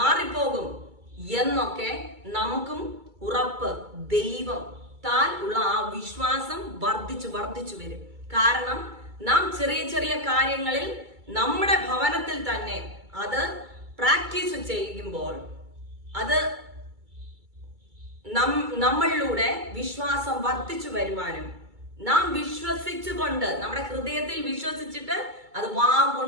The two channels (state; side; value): late; left; 2.3 ms